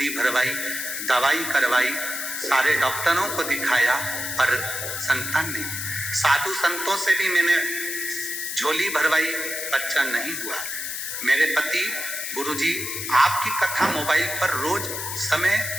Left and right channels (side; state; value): left; noise; hiss, 5 dB below the sound